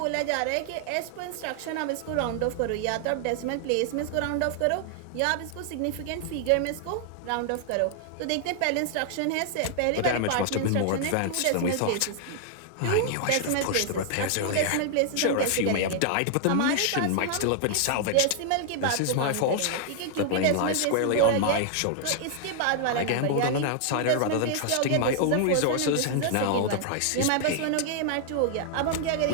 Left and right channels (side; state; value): both; different; correlation 0.00